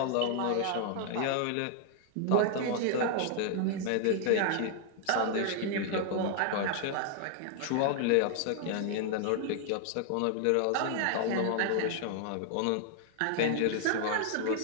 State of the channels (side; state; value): both; different; correlation 0.00